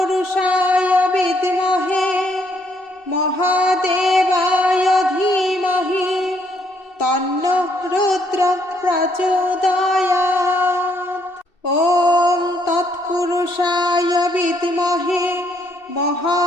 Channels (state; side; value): late; right; 2.7 ms